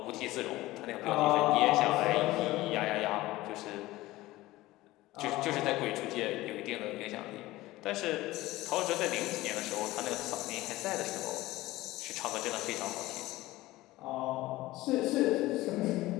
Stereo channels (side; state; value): right; quieter; 17.9 dB